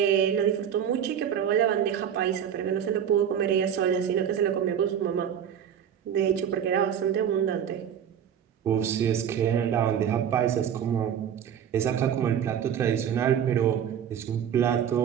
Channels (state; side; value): quieter; left; 8.8 dB